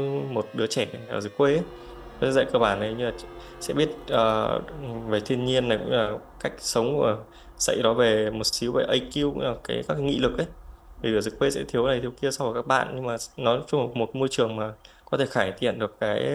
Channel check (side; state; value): both; identical; correlation 1.00